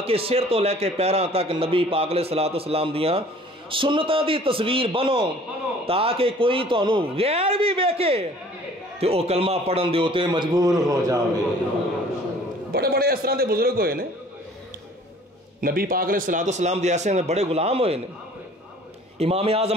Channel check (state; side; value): normal; both; correlation 0.51